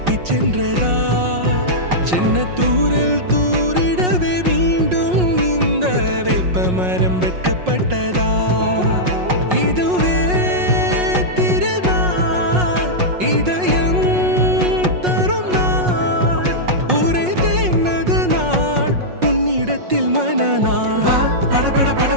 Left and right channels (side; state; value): left; late; 5.5 ms